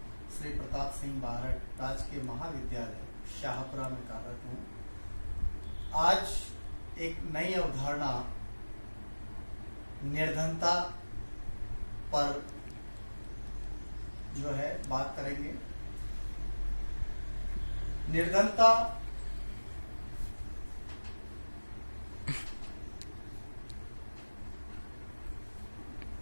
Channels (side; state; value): both; inverted; correlation -1.00